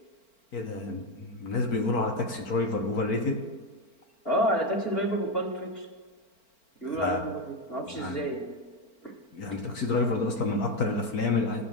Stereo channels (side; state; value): right; late; 4.4 ms